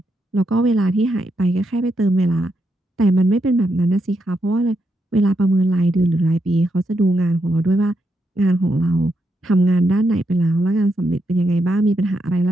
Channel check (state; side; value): normal; both; correlation 0.82